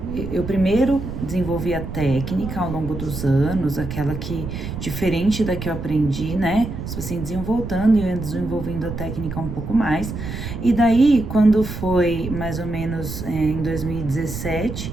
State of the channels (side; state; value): right; noise; rumble, 7 dB below the sound